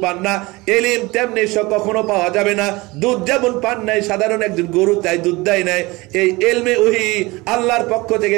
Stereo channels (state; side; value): quieter; left; 22.7 dB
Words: পান না, ইলম তেমনি কখনো পাওয়া যাবে না। দুধ যেমন পান নাই সাধারণ একজন গরু, তাই দুধ দেয় নাই, এই ইলমে ওহী আল্লাহর পক্ষ থেকে